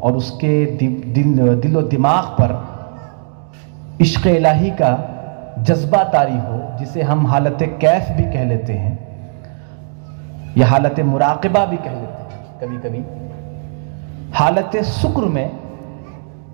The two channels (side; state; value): left; silent; digital silence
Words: और उसके दिलो दिमाग पर इश्क़ इलाही का जज्बा तारी हो, जिसे हम हालत कैफ भी कह लेते हैं या हालत मुराक़बा भी कह लेते हैं कभी कभी। हालत शुक्र में